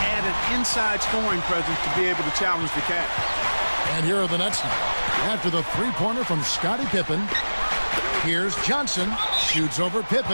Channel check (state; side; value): inverted; both; correlation -1.00